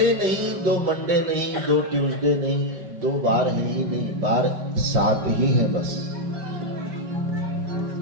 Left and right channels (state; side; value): late; left; 5.3 ms